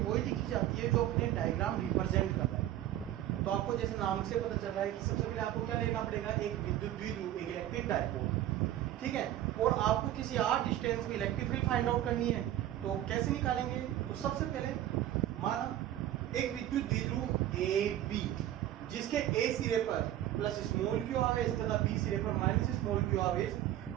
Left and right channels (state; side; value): quieter; left; 12.8 dB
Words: लिखी जाती है जो अपने डायग्राम रिप्रेजेंट कर रहा है। तो आपको जैसे नाम से पता चल रहा है कि सबसे पहले आपको क्या लेना पड़ेगा, एक विद्युत द्विध्रुव, एक इलेक्ट्रिक डाइपोल। ठीक है, और आपको किसी आर डिस्टेंस में इलेक्ट्रिक फील्ड फाइंड आउट करनी है। तो कैसे निकालेंगे? तो सबसे पहले माना एक विद्युत द्विध्रुव ए बी जिसके ए सिरे पर प्लस स्मॉल क्यू आवेश तथा बी सिरे पर माइनस स्मॉल क्यू आवेश